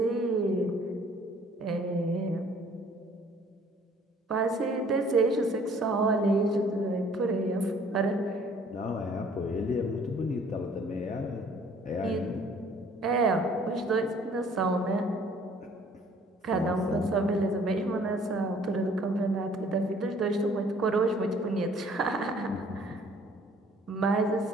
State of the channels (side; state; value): both; normal; correlation 0.56